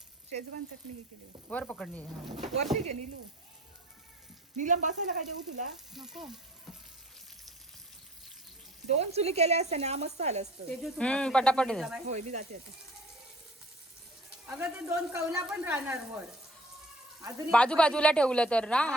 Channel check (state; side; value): normal; both; correlation 0.50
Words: शेजवान चटणी हे केली. वर पकडली वरती घे नीलू. नीलम बसायला काय देऊ तुला? नको. 2 चुली केल्या असत्या ना मस्त आलं असतं. पटापट होय मी जाते आता. अगं ते 2 कौला पण राहणार वर अजून बाजूला ठेवलं तर ना